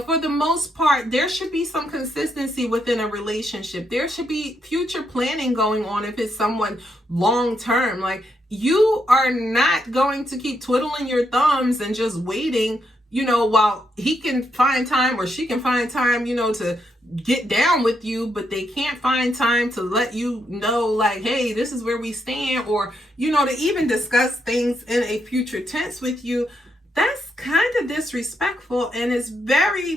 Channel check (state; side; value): normal; both; correlation 0.79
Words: for the most part, there should be some consistency within a relationship. There should be future planning going on if it's someone long term. Like, you are not going to keep twiddling your thumbs and just waiting, while he can find time or she can find time, to get down with you, but they can't find time to let you know, like, hey, this is where we stand, or, to even discuss things in a future tense with you. That's kind of disrespectful, and it's